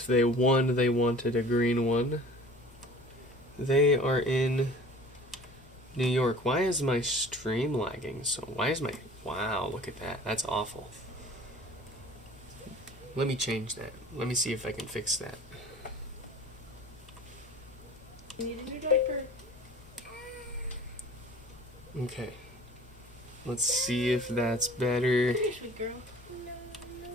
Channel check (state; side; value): normal; both; correlation 0.45